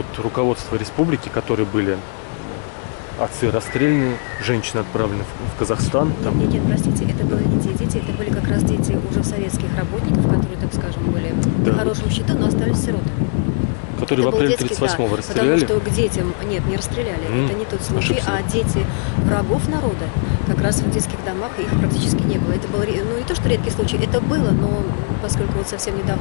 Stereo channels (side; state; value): right; silent; 55 dB below the other